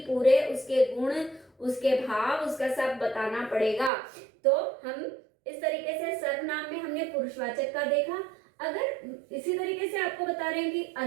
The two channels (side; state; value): left; drops out; at 3.9 s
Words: पूरे उसके गुण, उसके भाव, उसका सब बताना पड़ेगा। तो हम इस तरीके से सर्वनाम में हमने पुरुषवाचक का देखा। अगर इसी तरीके से आपको बता रहे हैं कि